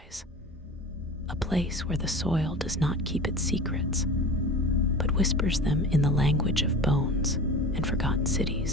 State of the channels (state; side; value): normal; both; correlation 0.35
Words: a place where the soil does not keep its secrets, but whispers them in the language of bones and forgotten